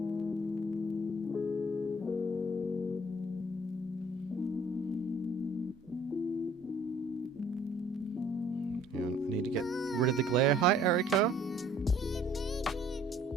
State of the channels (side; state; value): both; normal; correlation 0.57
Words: Yeah, I need to get rid of the glare. Hi Erica.